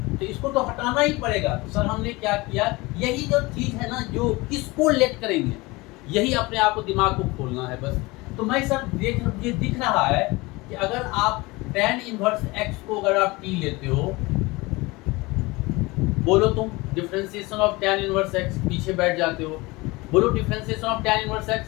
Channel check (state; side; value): quieter; right; 23.0 dB